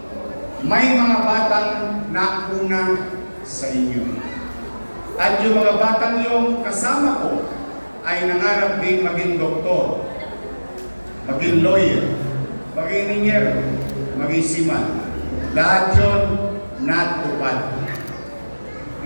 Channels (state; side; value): inverted; both; correlation -1.00